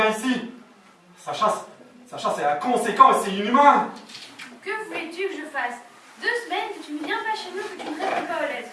ici. Sacha, c'est inconséquent et c'est inhumain. Que voulais-tu que je fasse? 2 semaines que tu ne viens pas chez nous, que tu ne réponds pas aux lettres.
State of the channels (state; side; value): identical; both; correlation 1.00